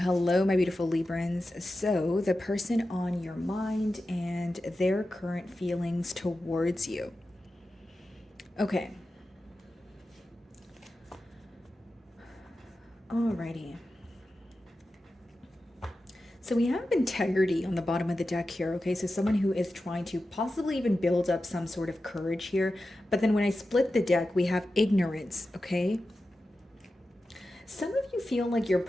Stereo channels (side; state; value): both; normal; correlation 0.92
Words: my beautiful Librans. So the person on your mind and their current feelings towards you. Okay. Alrighty. So we have integrity on the bottom of the deck here, okay? So someone who is trying to possibly even build up some sort of courage here. But then when I split the deck, we have ignorance, okay? Some of you feel like